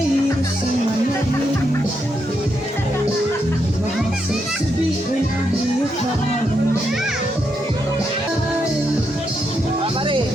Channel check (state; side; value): normal; both; correlation 0.81